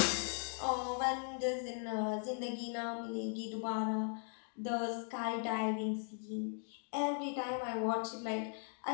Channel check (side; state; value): right; silent; 52 dB below the other